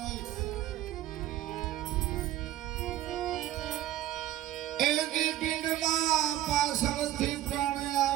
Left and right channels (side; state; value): left; quieter; 13.7 dB